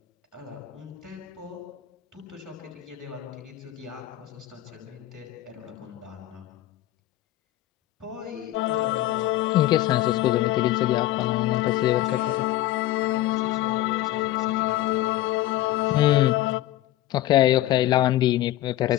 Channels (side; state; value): right; quieter; 14.8 dB